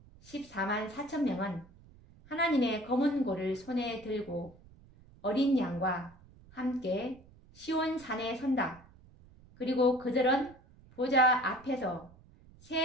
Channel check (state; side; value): noise; right; rumble, 24 dB below the sound